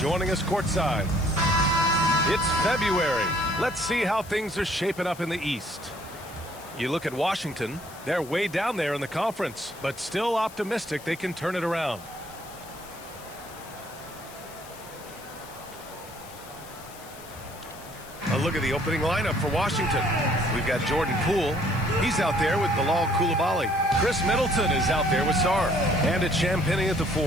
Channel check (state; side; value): noise; left; hiss, 19 dB below the sound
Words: us courtside. It's February. Let's see how things are shaping up in the East. You look at Washington, they're way down there in the conference, but still optimistic they can turn it around. A look at the opening lineup for Washington. We've got Jordan Poole. He's out there with Bilal Coulibaly. Chris Middleton is out there with Sarr. And it's Champagnie at the